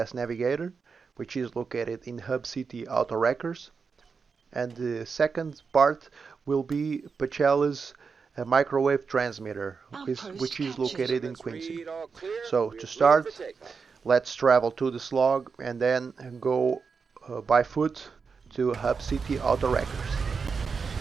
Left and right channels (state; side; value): quieter; left; 5.3 dB